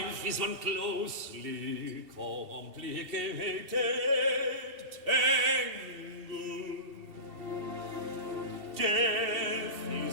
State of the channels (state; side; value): late; left; 2.7 ms